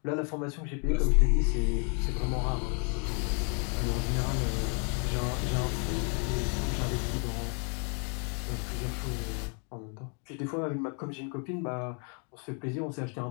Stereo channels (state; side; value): quieter; right; 39.4 dB